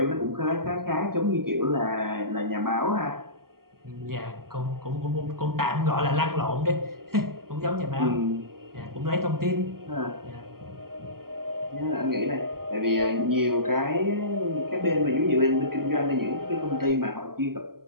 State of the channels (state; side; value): late; left; 0.93 ms